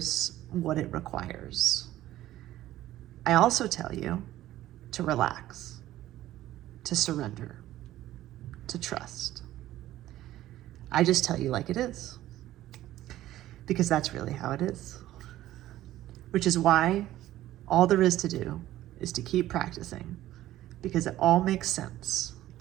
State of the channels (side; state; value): left; quieter; 14.4 dB